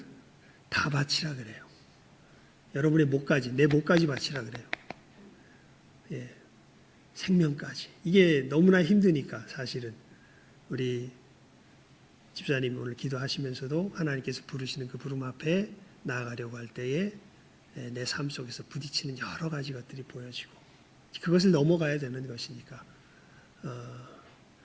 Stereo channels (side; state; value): both; identical; correlation 1.00